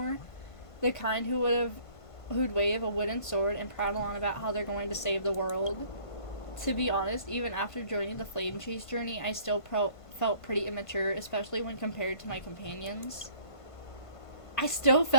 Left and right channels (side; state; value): right; late; 1.5 ms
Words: The kind who'd wave a wooden sword and prattle on about how they're going to save the world. To be honest, even after joining the Flame Chase journey, I still felt pretty immature, especially when compared to my companions. I still